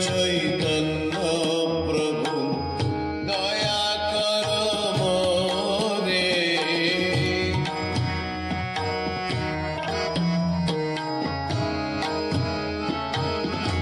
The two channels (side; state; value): both; identical; correlation 1.00